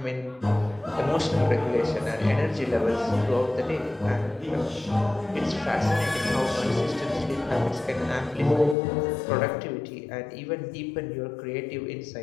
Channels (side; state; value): right; drops out; at 8.8 s